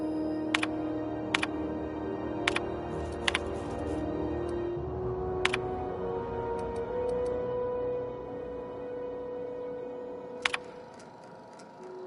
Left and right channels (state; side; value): identical; both; correlation 1.00